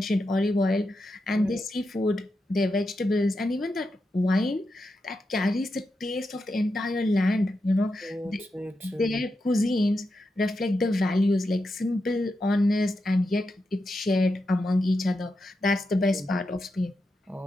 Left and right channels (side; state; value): both; normal; correlation 0.87